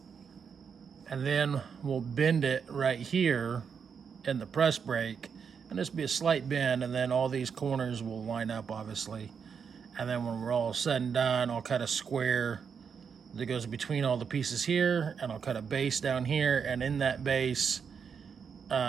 then we'll bend it right here in the press brake, and this will be a slight bend, and then all these corners will line up, obviously. And then when we're all said and done, I'll cut a square that goes between all the pieces here, and I'll cut a base down here, and in that base,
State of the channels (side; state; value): left; quieter; 6.6 dB